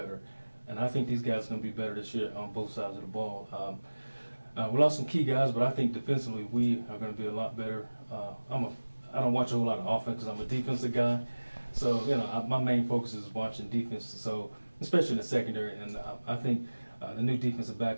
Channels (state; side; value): inverted; both; correlation -1.00